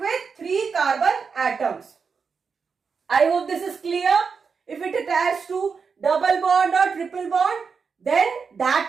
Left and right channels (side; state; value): left; quieter; 5.5 dB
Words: with 3 carbon atoms. I hope this is clear. If it attached to double bond or triple bond, then